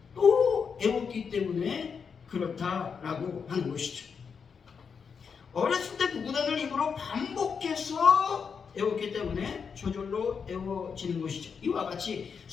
또 애웠기 때문에 그렇다라고 하는 것이죠. 어렸을 때 구구단을 입으로 반복해서 애웠기 때문에 저절로 애워지는 것이죠. 이와 같이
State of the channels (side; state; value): right; quieter; 6.1 dB